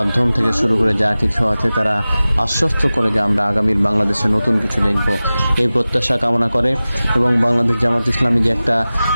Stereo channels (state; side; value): inverted; both; correlation -0.97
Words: থেকে শুরু করে যা কিছু আছে তারা আশ্বস্ত করে যে আমরা আগামীর বাংলাদেশে নতুন কিছু দেখব, এই প্রত্যাশা কামনা করে। এবং বাংলাদেশ জামাত ইসলামী যে একটা